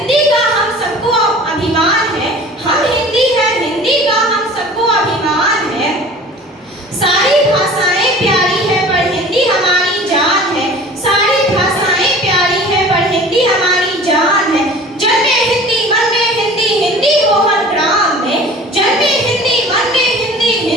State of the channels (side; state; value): both; normal; correlation 0.43